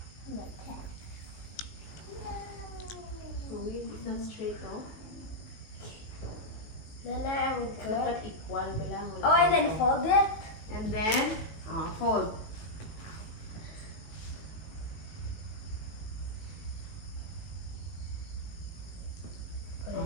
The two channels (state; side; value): late; right; 18 ms